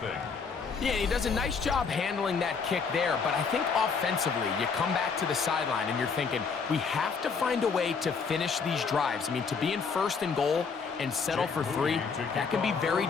Yeah, he does a nice job handling that kick there, but I think offensively, you come back to the sideline and you're thinking, we have to find a way to finish these drives. I mean, to be in 1st and goal and settle for 3, that can be very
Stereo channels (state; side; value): quieter; right; 5.4 dB